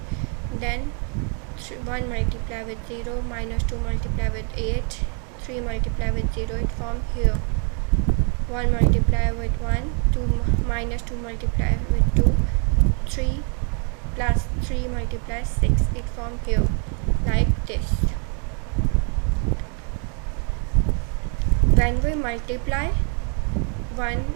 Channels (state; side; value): quieter; left; 39.9 dB